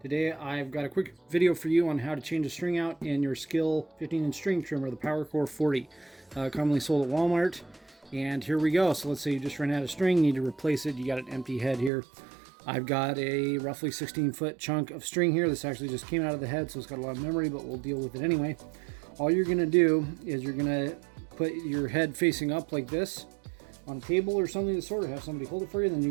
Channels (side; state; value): left; drops out; at 11.9 s